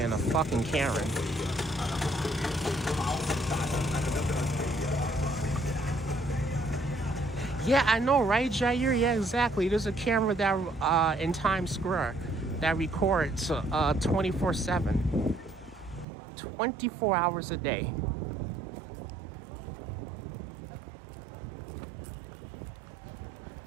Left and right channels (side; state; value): left; drops out; at 16.1 s